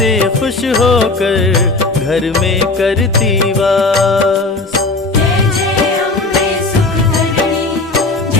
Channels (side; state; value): right; quieter; 3.3 dB